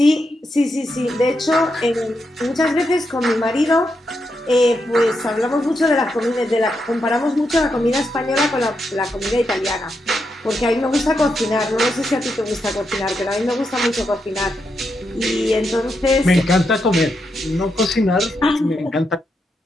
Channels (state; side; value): normal; both; correlation 0.83